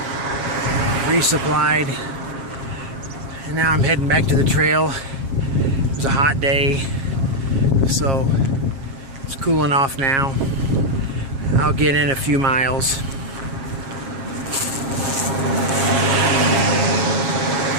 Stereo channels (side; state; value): left; late; 7.4 ms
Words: resupplied. And now I'm heading back to the trail. It was a hot day, so it's cooling off now. I'll get in a few miles.